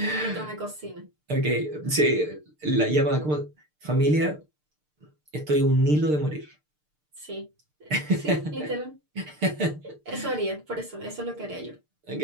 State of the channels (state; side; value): late; left; 6.7 ms